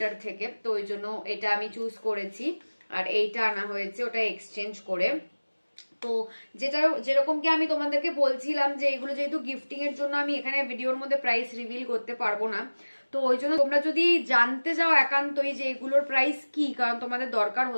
থেকে। তো ওই জন্য এটা আমি চুজ করেছি, আর এইটা আনা হয়েছে ওটা এক্সচেঞ্জ করে। তো যেটা যেরকম কি আমি তোমাদেরকে বলছিলাম যে এগুলো যেহেতু গিফটিং এর জন্য আমি এখানে ভিডিওর মধ্যে প্রাইস রিভিল করতে পারবো না, তো ওই জন্য তোমরা যদি জানতে যাও একান্তই যে এগুলোর প্রাইস কি, কারণ তোমাদের দরকার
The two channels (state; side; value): inverted; both; correlation -1.00